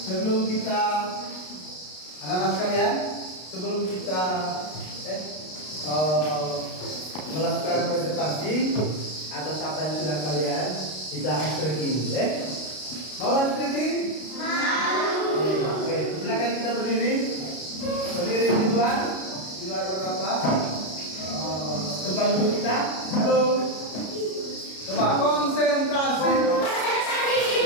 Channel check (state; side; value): late; right; 33 ms